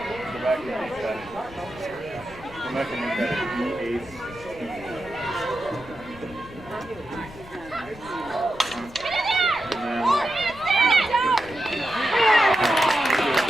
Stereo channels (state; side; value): noise; left; rumble, 19 dB below the sound